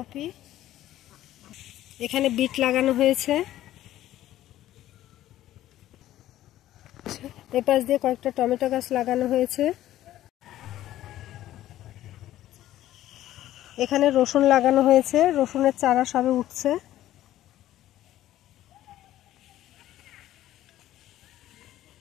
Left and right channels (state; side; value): quieter; right; 13.7 dB